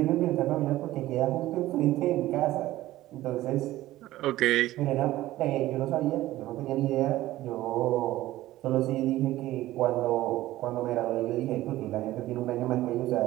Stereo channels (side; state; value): left; quieter; 15.8 dB